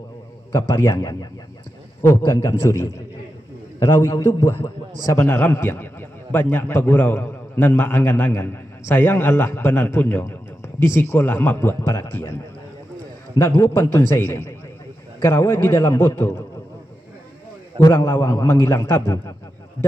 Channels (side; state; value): both; normal; correlation 0.89